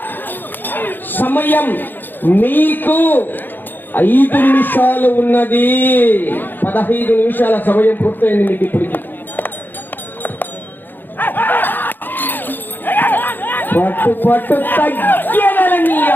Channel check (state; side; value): late; right; 0.091 ms